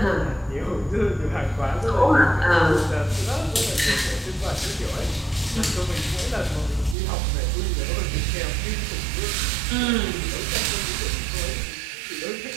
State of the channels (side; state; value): left; drops out; at 7.0 s